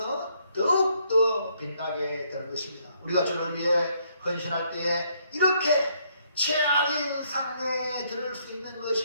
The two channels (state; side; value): inverted; both; correlation -0.71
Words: 더욱더 빛나게 되는 것입니다. 우리가 주를 위해 헌신할 때 이렇게 최악인 상황에 들을 수 있는